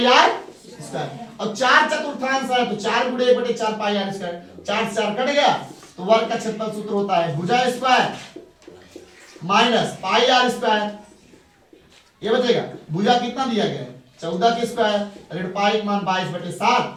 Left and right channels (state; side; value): identical; both; correlation 1.00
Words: आर स्क्वायर। और 4 चतुर्थांश है तो 4 गुणे 1/4 पाई आर स्क्वायर, 4 से 4 कट गया, तो वर्ग का क्षेत्रफल सूत्र होता है भुजा square minus pi r square. ये बचेगा, भुजा कितना दिया गया है, 14 के स्क्वायर, ऋण पाई मान 22/7,